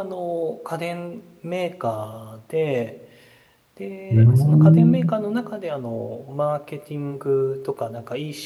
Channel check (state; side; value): identical; both; correlation 1.00